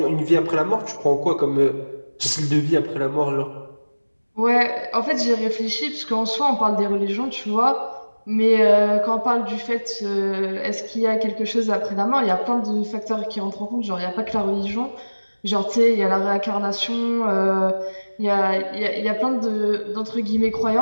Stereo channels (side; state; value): both; inverted; correlation -1.00